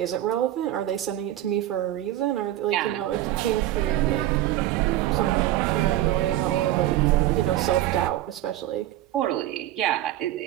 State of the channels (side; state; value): left; quieter; 13.9 dB